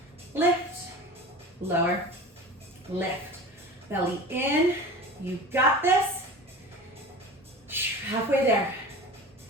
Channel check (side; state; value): both; normal; correlation 0.35